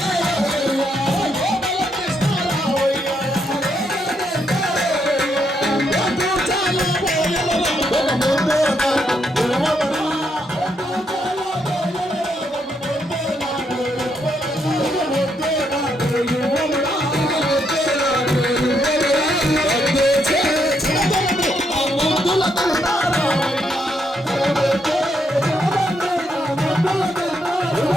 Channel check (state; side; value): normal; both; correlation 0.77